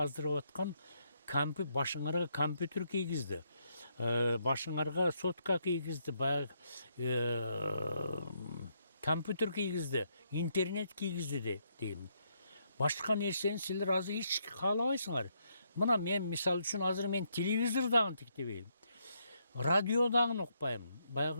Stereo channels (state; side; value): inverted; both; correlation -0.76